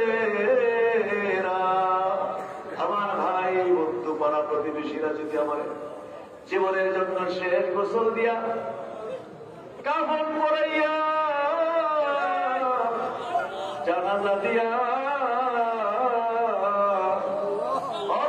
আমার ভাই বন্ধু পাড়া প্রতিবেশীরা যদি আমার জীবনের জন্য শেষ গোসল দিয়া কাফন পরাইয়া জানাজা দিয়া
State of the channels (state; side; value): identical; both; correlation 1.00